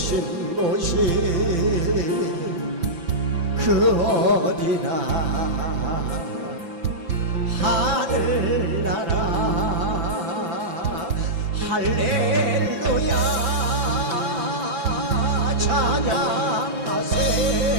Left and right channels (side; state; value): left; late; 6.0 ms